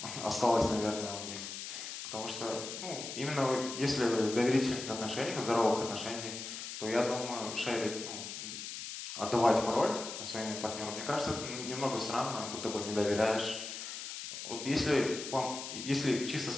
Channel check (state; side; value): noise; left; hiss, 8 dB below the sound